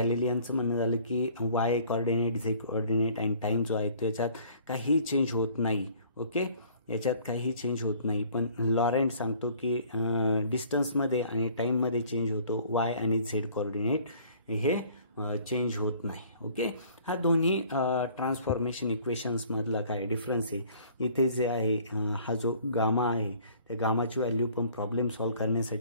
म्हणणं झालं की वाय कोऑर्डिनेट झेड कोऑर्डिनेट आणि टाईम जो आहे त्याच्यात काही चेंज होत नाही. ओके, याच्यात काही चेंज होत नाही. पण लॉरेंट सांगतो की डिस्टन्समध्ये आणि टाईममध्ये चेंज होतो, वाय आणि झेड कोऑर्डिनेट हे चेंज होत नाही. ओके, हा दोन्ही ट्रान्सफॉर्मेशन इक्वेशन्समधला काय डिफरन्स आहे. इथे जे आहे हा जो गामा आहे त्या गामाची व्हॅल्यू पण प्रॉब्लेम सॉल्व्ह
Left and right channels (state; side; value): inverted; both; correlation -0.54